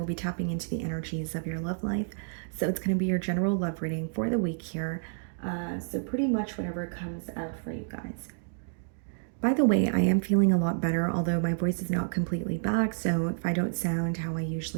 be tapping into the energies of your love life. So it's going to be your general love reading for the week here. So pretty much whatever comes out for you guys. By the way, I am feeling a lot better, although my voice is not completely back. So if I don't sound how I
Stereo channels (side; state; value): left; silent; digital silence